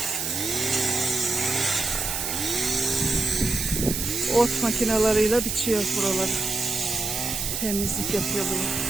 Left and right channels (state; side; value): noise; right; hiss, 2 dB below the sound